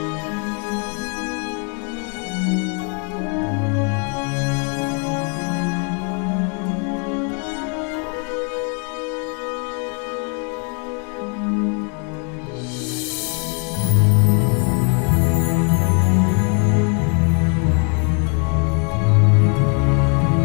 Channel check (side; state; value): right; quieter; 37.9 dB